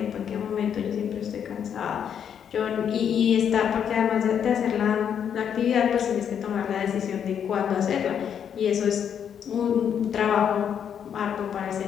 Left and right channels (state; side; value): quieter; right; 8.3 dB